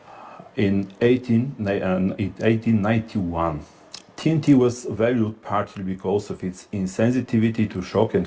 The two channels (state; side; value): identical; both; correlation 1.00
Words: in 1891. TNT was valued partly because of its insensitivity to shock and